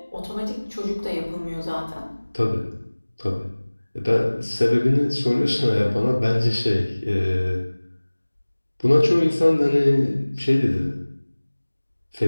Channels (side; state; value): both; inverted; correlation -1.00